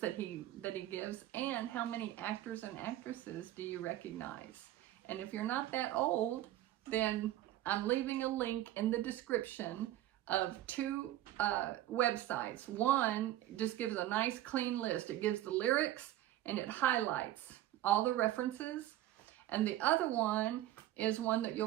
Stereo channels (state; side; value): quieter; left; 14.1 dB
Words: that he gives, and how many actors and actresses do you recognize? And if you're not that old, then I'm leaving a link in the description of two websites. One just gives a nice clean list. It gives the lyrics and it highlights all the references. And the other one is one that you'll